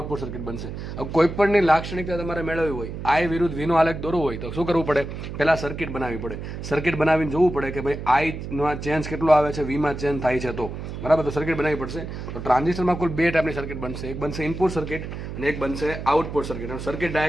સર્કિટ બનશે. હવે કોઈ પણની લાક્ષણિકતા તમારે મેળવવી હોય, આઈ વિરુદ્ધ વીનો આલેખ દોરવો હોય તો શું કરવું પડે? પહેલાં સર્કિટ બનાવવી પડે. સર્કિટ બનાવીને જોવું પડે કે ભાઈ આઈમાં ચેન્જ કેટલો આવે છે, વીમાં ચેન્જ થાય છે તો, બરાબર. તો સર્કિટ બનાવવી પડશે. તો ટ્રાન્ઝિસ્ટરમાં કુલ બે ટાઈપની સર્કિટ બનશે. એક બનશે ઇનપુટ સર્કિટ અને એક બનશે આઉટપુટ સર્કિટ. સર્કિટ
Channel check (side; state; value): right; noise; hum, 8 dB below the sound